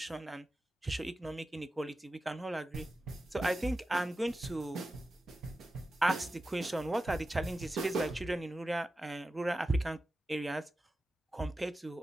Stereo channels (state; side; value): normal; both; correlation 0.93